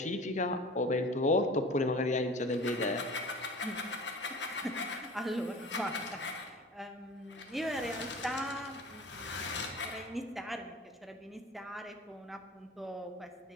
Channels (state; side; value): normal; both; correlation 0.40